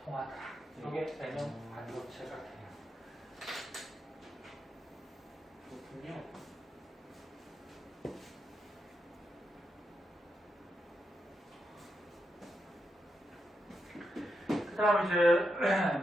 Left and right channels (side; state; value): both; normal; correlation 0.85